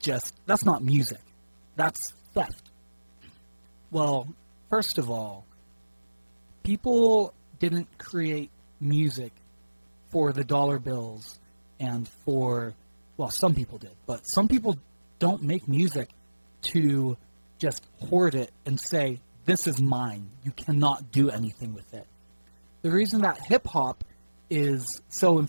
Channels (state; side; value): inverted; both; correlation -1.00